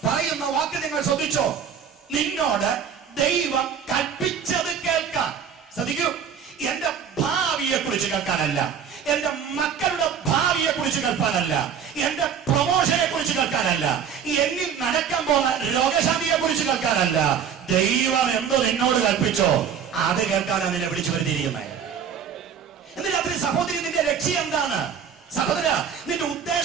പറയുന്ന വാക്ക് നിങ്ങൾ ശ്രദ്ധിച്ചോ? നിന്നോട് ദൈവം കൽപ്പിച്ചത് കേൾക്കാൻ. ശ്രദ്ധിക്കൂ, എന്റെ ഭാവിയെ കുറിച്ച് കേൾക്കാനല്ല, എന്റെ മക്കളുടെ ഭാവിയെ കുറിച്ച് കേൾക്കാനല്ല, എന്റെ പ്രൊമോഷനെ കുറിച്ച് കേൾക്കാനല്ല, എന്നിൽ നടക്കാൻ പോകുന്ന രോഗശാന്തിയെ കുറിച്ച് കേൾക്കാനല്ല. ദൈവം എന്തോ നിന്നോട് കൽപ്പിച്ചോ അത് കേൾക്കാനാണ് നിന്നെ വിളിച്ചു വരുത്തിയിരിക്കുന്നത്. ഇന്ന് രാത്രി സഹോദരി, നിന്റെ ലക്ഷ്യം എന്താണ്? സഹോദര, നിന്റെ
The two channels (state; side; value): quieter; left; 7.6 dB